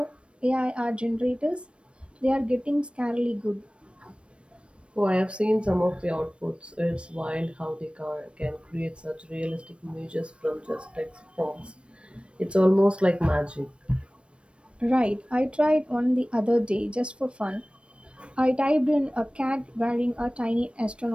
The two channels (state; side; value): late; left; 0.059 ms